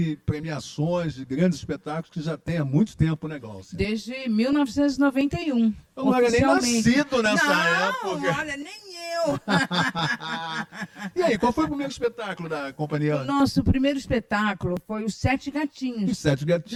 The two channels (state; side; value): identical; both; correlation 1.00